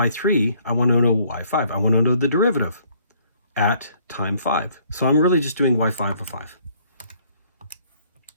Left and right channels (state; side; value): inverted; both; correlation -0.63